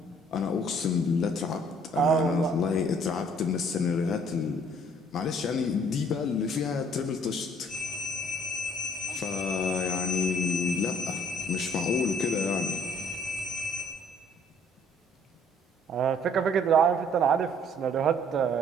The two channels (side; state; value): both; normal; correlation 0.59